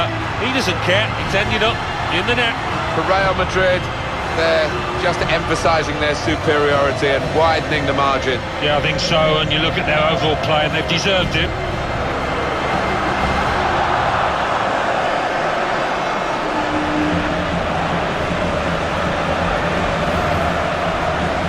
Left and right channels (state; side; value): identical; both; correlation 1.00